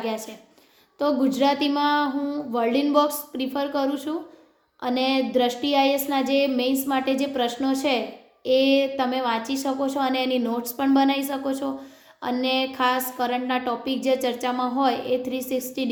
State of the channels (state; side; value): identical; both; correlation 1.00